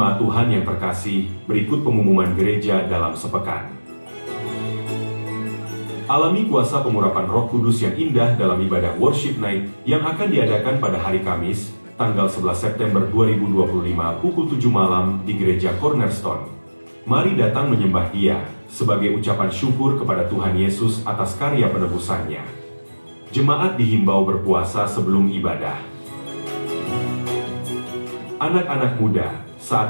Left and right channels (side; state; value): both; inverted; correlation -1.00